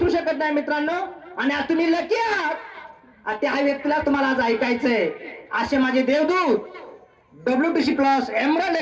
शकत नाही मित्रांनो. आणि आज तुम्ही लकी आहात, त्या व्यक्तीला तुम्हाला आज ऐकायचंय. असे माझे देवदूत, WTC+ emerald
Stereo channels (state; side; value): identical; both; correlation 1.00